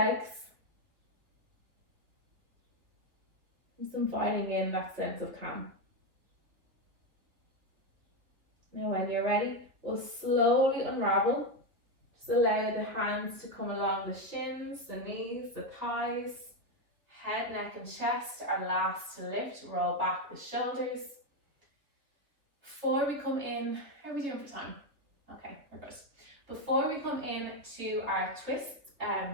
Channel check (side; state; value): left; late; 3.5 ms